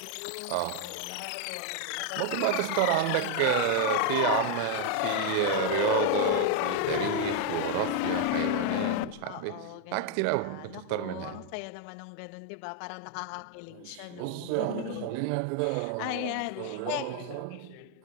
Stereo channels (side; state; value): both; different; correlation 0.00